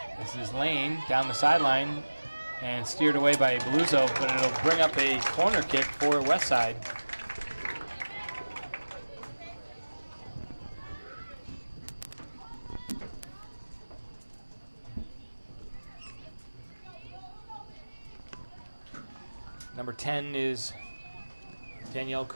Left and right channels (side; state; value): both; inverted; correlation -1.00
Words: This is Lane down the sideline and steered away by Bluzo, but it'll bring up a corner kick for West Side. Number 10 is Danielle